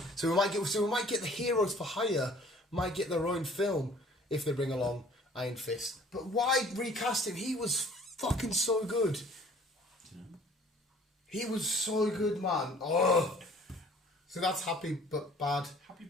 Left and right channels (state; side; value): normal; both; correlation 0.53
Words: So we might get the heroes for hire. Might get their own film if they bring along Iron Fist. But why recast him? He was fucking so good. He was so good, man. Oh. So that's happy but bad. Happy